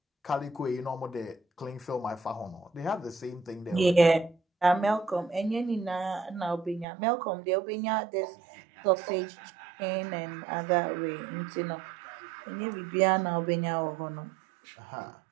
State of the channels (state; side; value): drops out; left; at 6.9 s